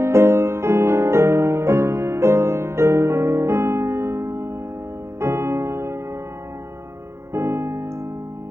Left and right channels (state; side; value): late; left; 0.13 ms